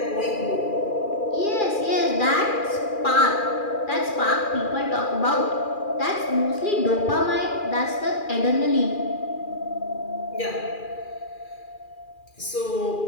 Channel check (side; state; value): right; late; 2.4 ms